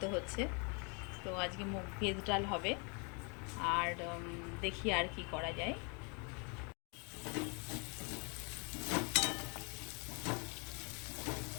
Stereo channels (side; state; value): right; quieter; 34.3 dB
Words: হচ্ছে। তো আজকে ভেজ ডাল হবে আর দেখি আর কি করা যায়।